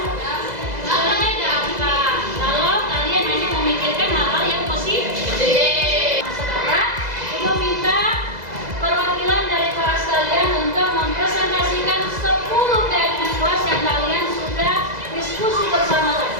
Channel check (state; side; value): late; left; 2.0 ms